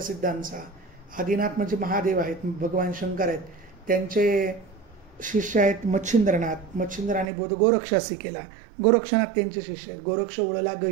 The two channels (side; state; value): left; drops out; at 7.3 s